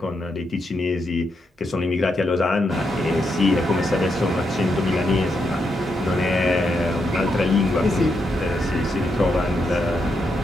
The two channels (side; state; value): both; normal; correlation 0.81